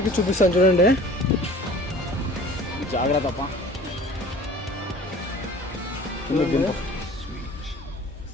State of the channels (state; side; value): normal; both; correlation 0.46